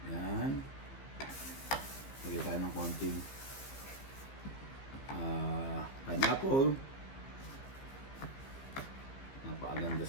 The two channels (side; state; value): right; late; 15 ms